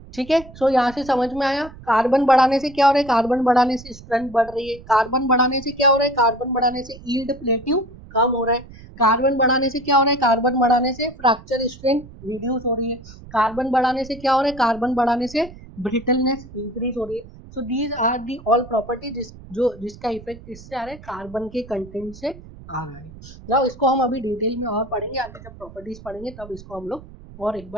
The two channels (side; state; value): right; noise; rumble, 18 dB below the sound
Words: ठीक है, सो यहाँ से समझ में आया, कार्बन बढ़ाने से क्या हो रहा है, कार्बन बढ़ाने से स्ट्रेंथ बढ़ रही है, कार्बन बढ़ाने से क्या हो रहा है, कार्बन बढ़ाने से यील्ड प्लेट्यू कम हो रहा है, कार्बन बढ़ाने से क्या हो रहा है, कार्बन बढ़ाने से फ्रैक्चर स्ट्रेंथ रिड्यूस हो रही है, कार्बन बढ़ाने से क्या हो रहा है, कार्बन बढ़ाने से ब्रिटलनेस इंक्रीज हो रही है। So these are the all property जिसका इफेक्ट इससे आ रहा है, कार्बन के कंटेंट से आ रहा है। ना इसको हम अभी डिटेल में और पढ़ेंगे, आगे जब प्रॉपर्टीज पढ़ेंगे तब इसको हम लोग और एक